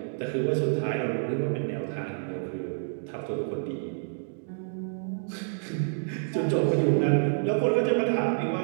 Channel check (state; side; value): silent; left; digital silence